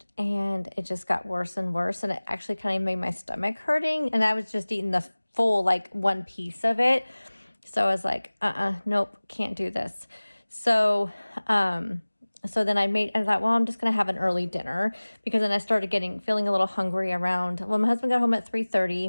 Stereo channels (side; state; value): both; inverted; correlation -1.00